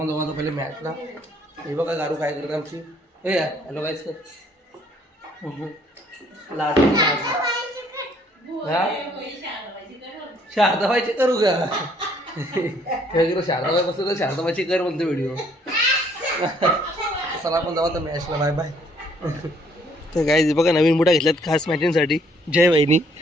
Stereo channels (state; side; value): normal; both; correlation 0.64